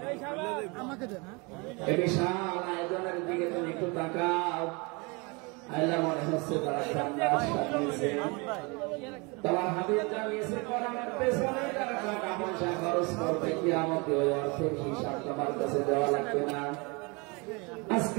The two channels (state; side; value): quieter; left; 28.7 dB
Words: এই বিশাল আয়োজনের দিকে তুমি একটু তাকাও। আল্লাহ মনে হচ্ছে তারা জান্নাত সাজিয়েছে, তোমার হাবিব জানিয়েছে কোরআনের পেছনে যারা টাকা পয়সা খরচ করবে কিয়ামতে ওই অর্থের হিসাব তোমার কাছে দেওয়া লাগবে না।